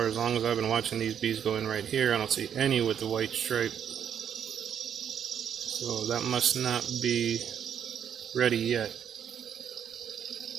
as long as I've been watching these bees go in right here, I don't see any with the white stripe. So that must not be ready yet.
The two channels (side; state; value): left; quieter; 8.6 dB